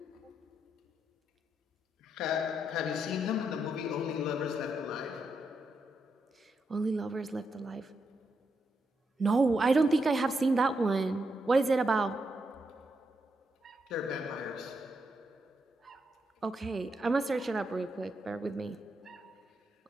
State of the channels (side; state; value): both; normal; correlation 0.82